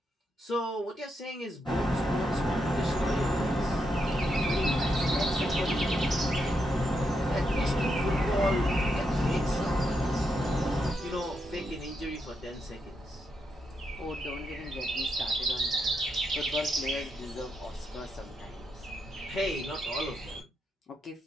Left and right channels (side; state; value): both; normal; correlation 0.81